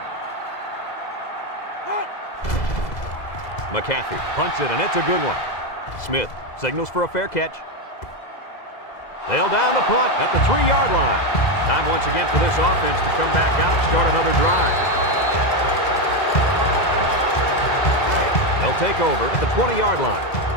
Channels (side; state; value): right; late; 2.0 ms